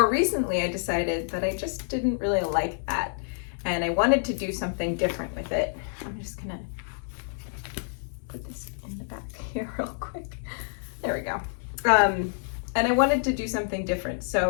recently, I decided that I just didn't really like that, and I wanted to do something different with it. I'm just gonna put this in the back here real quick. There we go. And I wanted to do something different,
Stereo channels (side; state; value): right; silent; 59 dB below the other